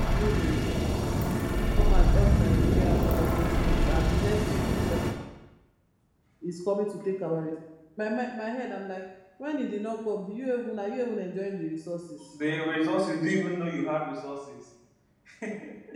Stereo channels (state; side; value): identical; both; correlation 1.00